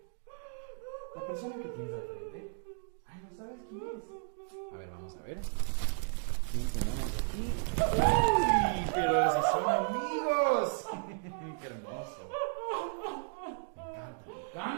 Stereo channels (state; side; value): silent; left; digital silence